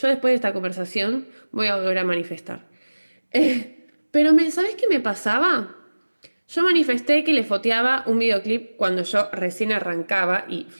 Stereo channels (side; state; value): both; inverted; correlation -1.00